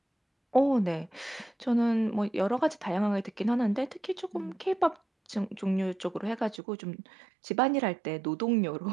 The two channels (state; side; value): drops out; left; at 6.6 s